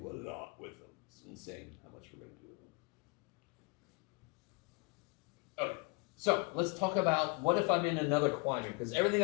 a lot with them. It's insane how much we're going to do with them. Okay. So let's talk about what if I'm in another quadrant, because everything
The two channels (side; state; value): right; quieter; 31.3 dB